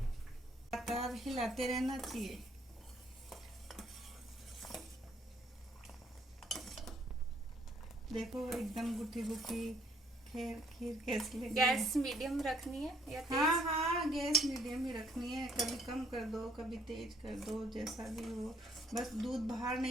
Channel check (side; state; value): both; normal; correlation 0.64